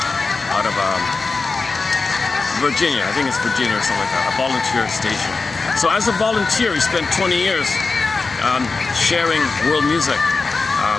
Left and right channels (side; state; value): right; quieter; 4.1 dB